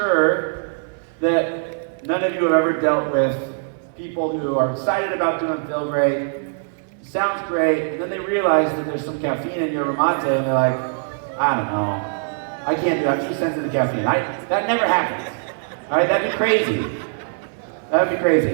that none of you have ever dealt with people who are excited about doing feel great, sounds great, and then they realize that there's some caffeine in your mate, and they're like, I don't know, I can't do that, I'm too sensitive to caffeine. That never happens. All right, that'd be crazy. That'd be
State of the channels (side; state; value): left; silent; 62 dB below the other